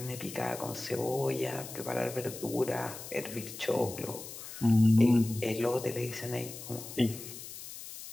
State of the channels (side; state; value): left; noise; hiss, 12 dB below the sound